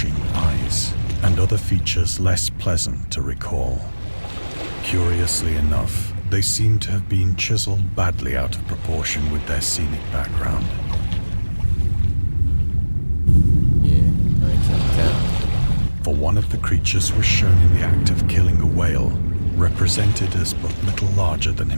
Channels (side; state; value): both; inverted; correlation -1.00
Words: eyes, and other features less pleasant to recall. Curiously enough, they seem to have been chiseled badly out of proportion with their scenic background. Yeah, I can tell. For one of the creatures was shown in the act of killing a whale, represented as but little larger than